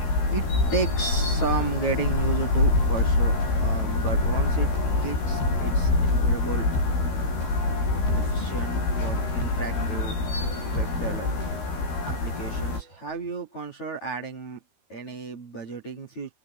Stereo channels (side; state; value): right; late; 13 ms